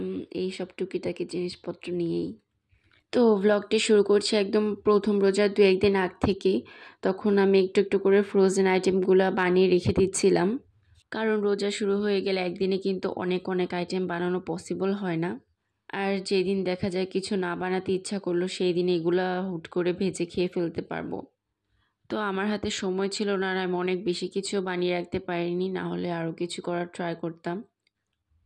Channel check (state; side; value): identical; both; correlation 1.00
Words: এই সব টুকিটাকি জিনিসপত্র নিয়েই। তো ব্লগটি শুরু করছি একদম প্রথম রোজার 2-1 দিন আগ থেকে। তখন আমি একটু একটু করে ফ্রোজেন আইটেমগুলো বানিয়ে রেখে দিচ্ছিলাম, কারণ রোজা শুরু হয়ে গেলে একদিনে কিন্তু অনেক অনেক আইটেম বানানো পসিবল হয় না। আর যেদিন দেখা যায় কিছু না বানাতে ইচ্ছা করলো সেই দিন এগুলা হুট করে ভেজে খেয়ে ফেলতে পারবো। তো আমার হাতে সময় ছিল না, আর আমি অনেক বেশি কিছু বানিয়ে রাখতে পারিনি, না হলে আরও কিছু করার ট্রাই করতাম।